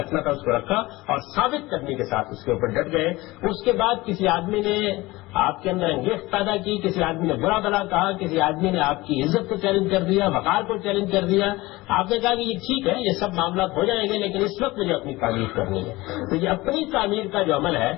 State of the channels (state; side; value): quieter; right; 20.4 dB